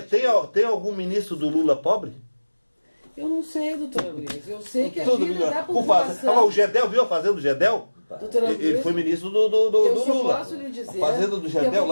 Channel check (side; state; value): both; inverted; correlation -1.00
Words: Tem algum ministro do Lula pobre? Eu não sei, doutora Luísa. Eu sei que a vida da população... O Gedel, viu a fazenda do Gedel? Ele foi ministro do Lula. Eu só posso lhe dizer a fazenda do Gedel